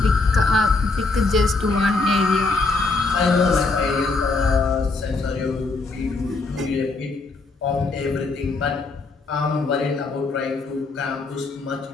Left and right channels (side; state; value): right; quieter; 3.7 dB